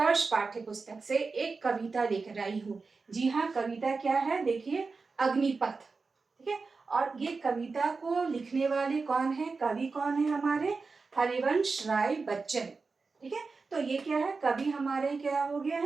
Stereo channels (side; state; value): left; quieter; 4.3 dB